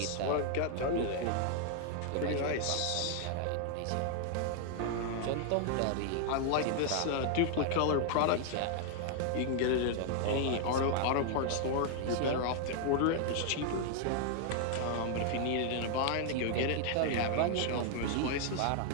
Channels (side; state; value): both; different; correlation 0.00